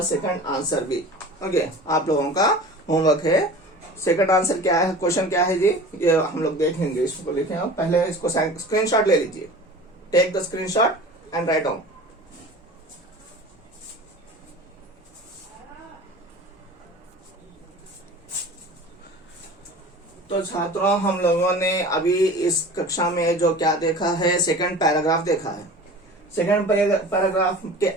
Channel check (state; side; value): normal; both; correlation 0.39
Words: सेकंड आंसर भी। ओके, आप लोगों का होमवर्क है। सेकंड आंसर क्या है, क्वेश्चन क्या है जी, ये हम लोग देखेंगे। इसको लिखें आप, पहले इसको स्क्रीनशॉट ले लीजिए। Take the screenshot and write down. तो छात्रों, हम लोगों ने अभी इस कक्षा में जो क्या देखा है, सेकंड पैराग्राफ देखा है। सेकंड पैराग्राफ के